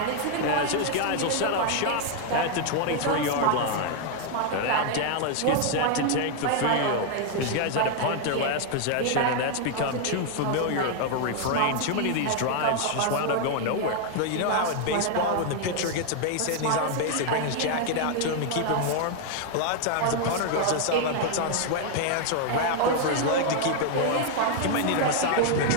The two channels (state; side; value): different; both; correlation 0.00